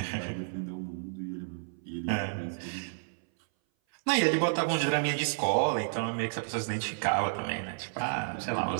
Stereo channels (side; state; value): left; silent; 57 dB below the other